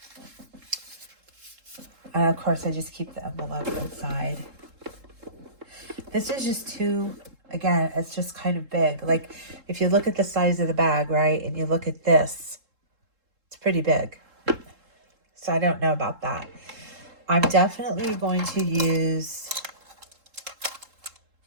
And of course, I just keep the envelope inside. This is just too, again, it's just kind of big. Like, if you look at the size of the bag, right, and you look at this, it's pretty big. So I don't know about that. I'm definitely going to use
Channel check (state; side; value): late; left; 3.7 ms